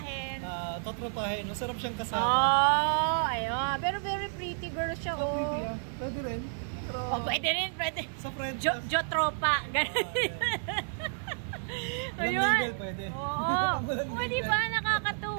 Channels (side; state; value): left; silent; digital silence